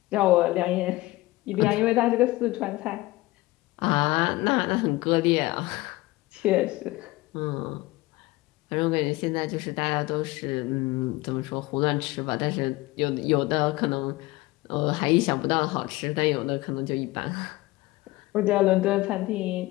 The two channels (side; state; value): right; quieter; 19.8 dB